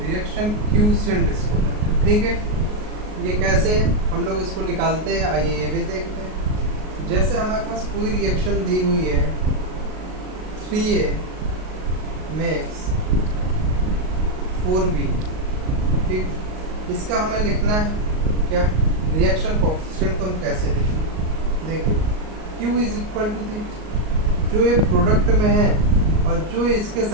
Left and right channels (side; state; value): left; late; 38 ms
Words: क्यूसेंट इसको कहते हैं। ठीक है, ये कैसे हम लोग इसको निकालते हैं, आइए ये भी देखते हैं। जैसे हमारे पास कोई रिएक्शन दी हुई है 3A मेक्स 4B। ठीक, इसका हमें लिखना है क्या? Reaction coefficient. तो हम कैसे लिखेंगे? देखिए Q is equal to the, जो ये प्रोडक्ट में है और जो इसके